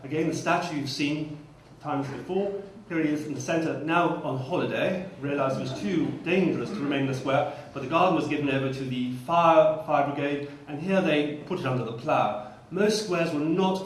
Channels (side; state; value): both; identical; correlation 1.00